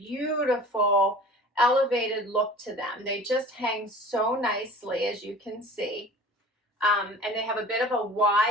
elevated look to them. They just hang so nicely, as you can see. And they have a bit of a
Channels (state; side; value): normal; both; correlation 0.42